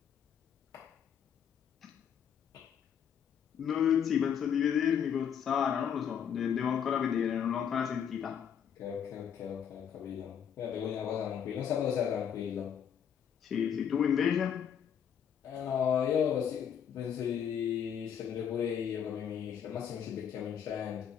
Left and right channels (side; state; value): right; quieter; 8.3 dB